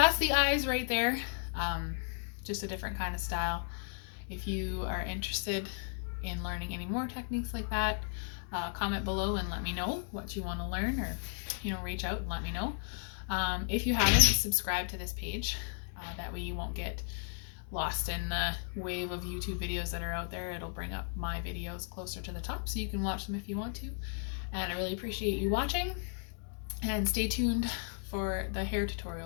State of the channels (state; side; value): silent; right; 55 dB below the other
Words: the eyes right there. Just a different kind of style. If you are interested in learning any more techniques like that, comment below and let me know what you want to learn, or, you know, reach out and let me know. If you haven't, subscribe to this page. That way you won't get lost in the wave of YouTube videos that are out there. It'll bring up my videos closer to the top so you can watch them if you want to. And I really appreciate you watching. And stay tuned for the hair